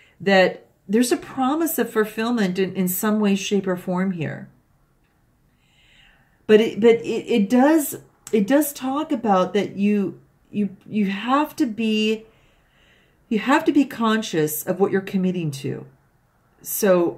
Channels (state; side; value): identical; both; correlation 1.00